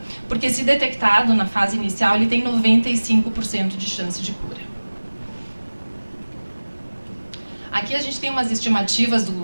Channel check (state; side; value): inverted; both; correlation -1.00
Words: Porque se detectado na fase inicial, ele tem 95% de chance de cura. Aqui a gente tem umas estimativas